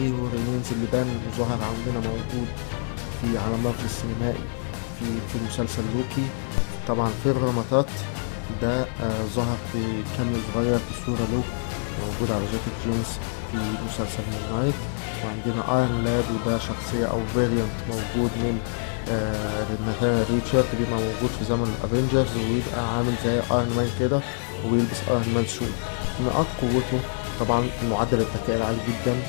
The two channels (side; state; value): right; silent; digital silence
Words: رينينز اللي بان وظهر عندنا موجود في عالم مارفل السينمائي في مسلسل لوكي. طبعا فير رماتات ده ظهر في كاميو صغير في صورة له موجود على جاكيت جينز في مسلسل مون نايت. وعندنا ايرون لاد وده شخصية او فيريانت موجود من ناثانيال ريتشارد، بيبقى موجود في زمن الافينجرز ويبقى عامل زي ايرون مان كده وبيلبس ايرون مان سوت. نقاط قوته طبعا معدل الذكاء العالي جدا.